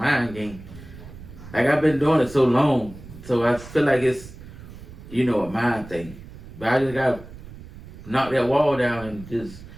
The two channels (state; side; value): noise; right; rumble, 16 dB below the sound